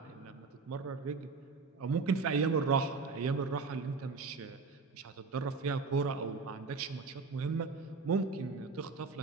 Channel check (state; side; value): quieter; left; 4.4 dB